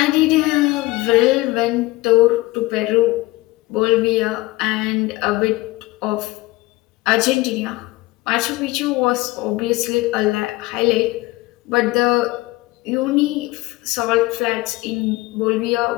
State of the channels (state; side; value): quieter; right; 20.3 dB